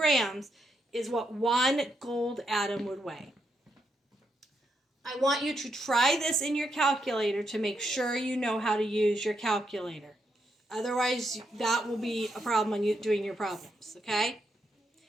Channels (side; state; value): both; normal; correlation 0.80